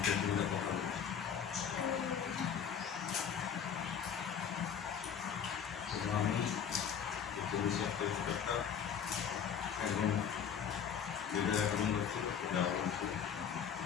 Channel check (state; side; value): quieter; right; 7.9 dB